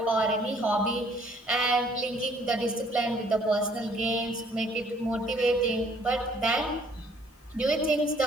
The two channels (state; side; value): normal; both; correlation 0.61